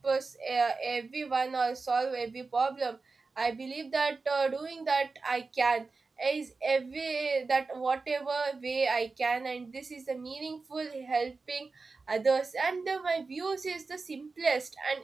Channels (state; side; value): quieter; left; 4.1 dB